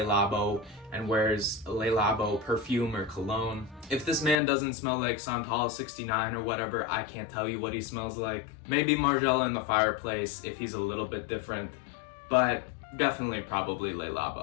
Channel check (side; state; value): right; drops out; at 4.4 s